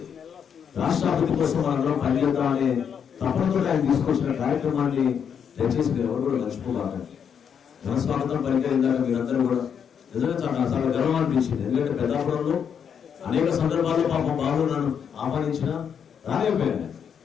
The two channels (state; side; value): quieter; right; 7.6 dB